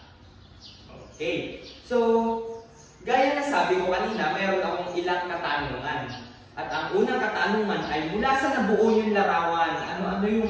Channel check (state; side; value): identical; both; correlation 1.00